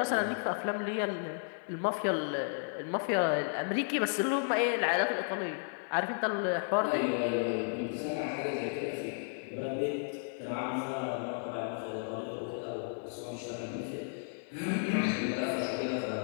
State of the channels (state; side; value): silent; right; 55 dB below the other